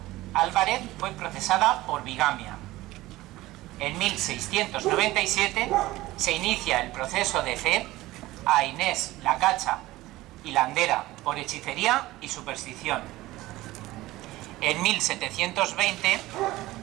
Álvarez fue procesada por bigamia. En 1697 se inicia el proceso de fe a Inés la Cacha y Landera por hechicería y superstición. En 1720,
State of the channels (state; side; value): quieter; left; 17.8 dB